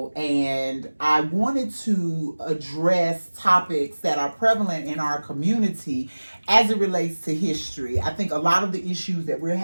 and I wanted to address topics that are prevalent in our community as it relates to history. I think a lot of the issues that we're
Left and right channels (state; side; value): inverted; both; correlation -1.00